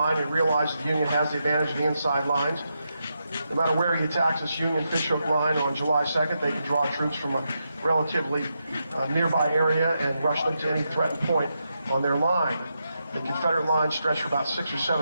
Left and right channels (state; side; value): inverted; both; correlation -0.84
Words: and realized the Union has the advantage of the inside lines. No matter where he attacks this Union Fishhook line on July 2nd, they can draw troops from a relatively nearby area and rush them to any threatened point on their line. The Confederate lines stretch for about 6 or